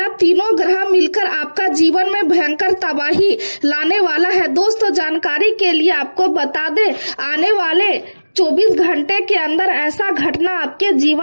तीनों ग्रह मिलकर आपका जीवन में भयंकर तबाही लाने वाला है। दोस्तों जानकारी के लिए आपको बता दे, आने वाले 24 घंटे के अंदर ऐसा घटना आपके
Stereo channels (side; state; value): both; inverted; correlation -1.00